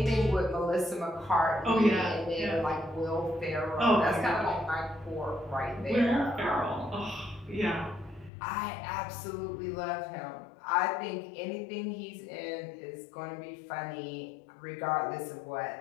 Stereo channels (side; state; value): right; drops out; at 8.3 s